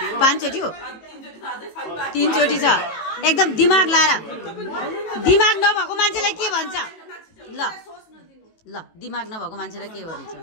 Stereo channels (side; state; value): right; late; 18 ms